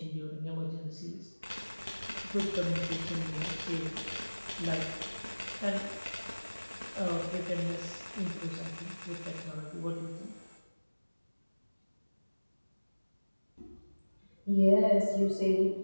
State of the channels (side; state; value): both; inverted; correlation -1.00